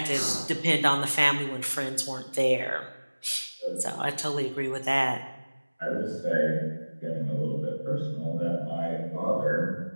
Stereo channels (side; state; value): both; inverted; correlation -1.00